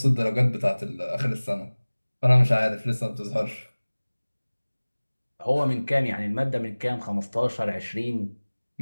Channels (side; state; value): both; inverted; correlation -1.00